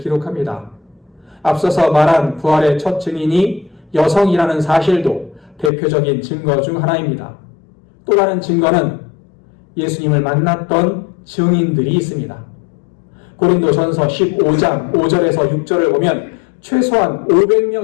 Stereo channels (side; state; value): right; drops out; at 5.7 s